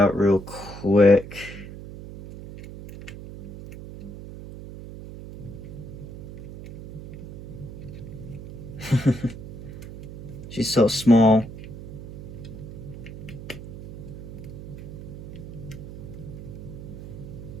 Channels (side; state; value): right; noise; hum, 11 dB below the sound